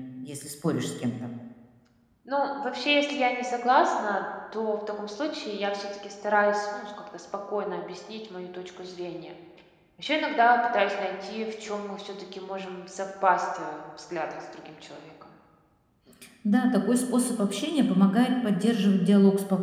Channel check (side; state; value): both; identical; correlation 1.00